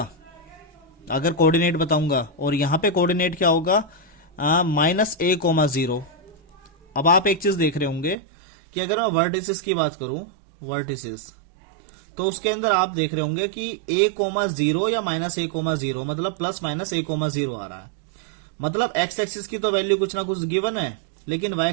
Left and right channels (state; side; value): drops out; left; at 8.2 s